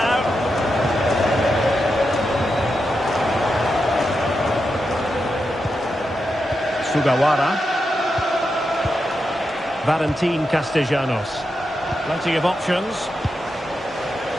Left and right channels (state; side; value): normal; both; correlation 0.87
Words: Sugawara. Valentin Castellanos. Plenty of options.